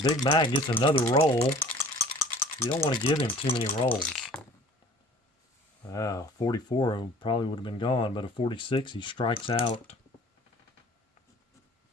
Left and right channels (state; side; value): normal; both; correlation 0.48